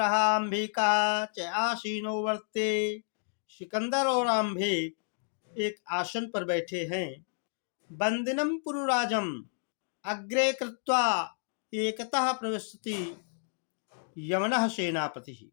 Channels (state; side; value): silent; right; digital silence